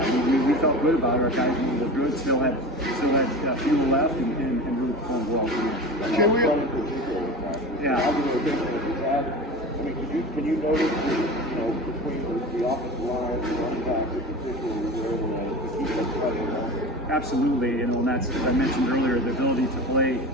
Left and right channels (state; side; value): normal; both; correlation 0.32